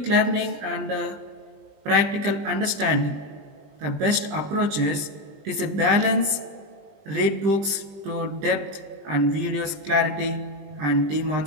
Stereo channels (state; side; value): late; left; 20 ms